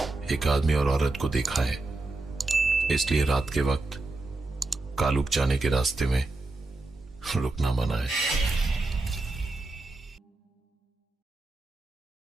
एक आदमी और औरत को देखा है, इसलिए रात के वक्त कालुक जाने के रास्ते में रुकना मना है।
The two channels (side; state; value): left; quieter; 3.1 dB